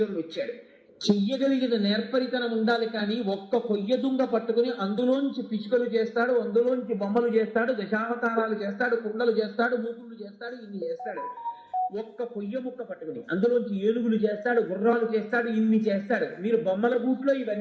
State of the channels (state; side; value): identical; both; correlation 1.00